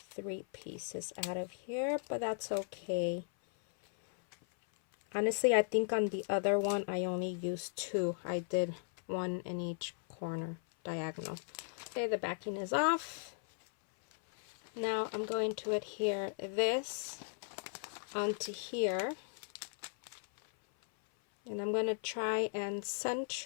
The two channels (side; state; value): right; silent; 53 dB below the other